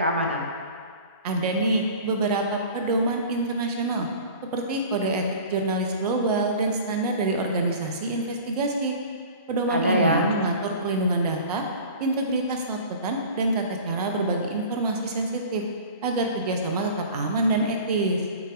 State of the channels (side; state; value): both; inverted; correlation -0.40